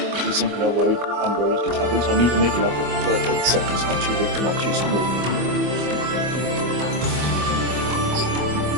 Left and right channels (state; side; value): late; left; 24 ms